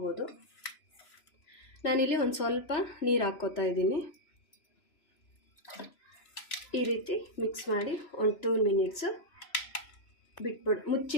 ನಾನಿಲ್ಲಿ ಒಂದು ಸ್ವಲ್ಪ ನೀರು ಹಾಕ್ಕೋತಾ ಇದ್ದೀನಿ. ಈ ರೀತಿ ಮಿಕ್ಸ್ ಮಾಡಿ ಒಂದು 2 ಮಿನಿಟ್ಸು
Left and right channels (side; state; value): right; late; 3.0 ms